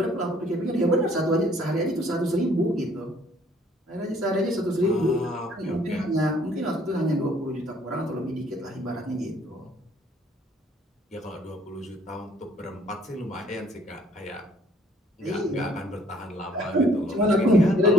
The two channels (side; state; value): both; normal; correlation 0.60